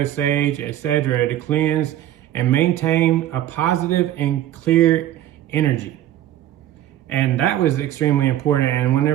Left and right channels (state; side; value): quieter; left; 12.6 dB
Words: sage, etc. to cleanse and maintain a positive and clear energy. And that was extremely important. And